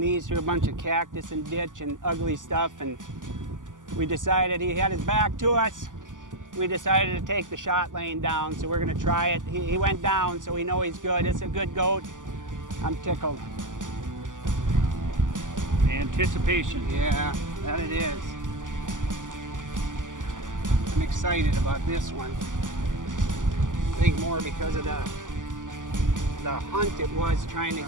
through a bunch of cactus and ditch and ugly stuff, and we decided he had his back to us. We decided to take the shot laying down, so we're gonna try it. He went down, so we know he's good. It's a good goat. I'm tickled. Anticipation. Yeah, that it is. I'm excited about this one. I think more because of the hunt it was trying to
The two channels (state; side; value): late; left; 0.88 ms